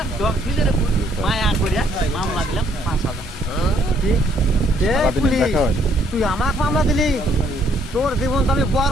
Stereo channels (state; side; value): normal; both; correlation 0.66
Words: ডগ দিলে রে মায়া করিয়া মামলা দিলাম 5,000। তুই আমাকে মামলা দিলি, তোর জীবন তো আমি